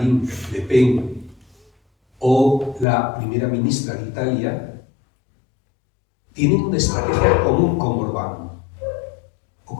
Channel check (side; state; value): right; drops out; at 2.9 s